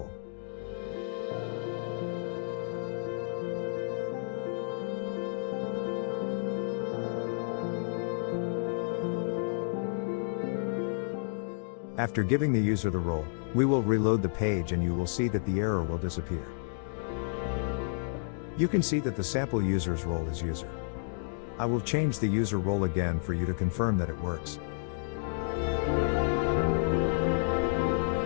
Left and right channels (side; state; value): right; silent; digital silence